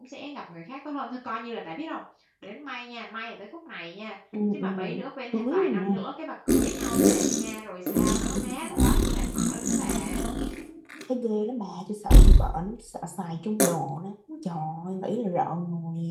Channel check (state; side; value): identical; both; correlation 1.00